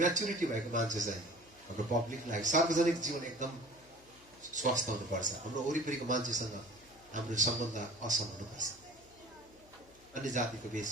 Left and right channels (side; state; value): left; noise; hum, 26 dB below the sound